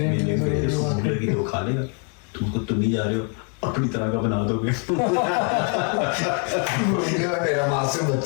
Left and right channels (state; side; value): quieter; right; 38.2 dB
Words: में तो खा लेगा, तुम नहीं जा रहे हो, अपनी तरह का बना दोगे। ये मेरा मासूम